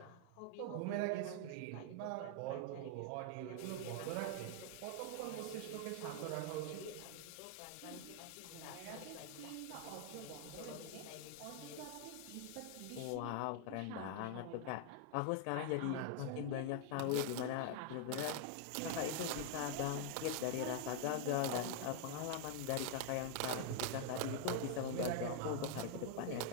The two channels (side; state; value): both; different; correlation 0.00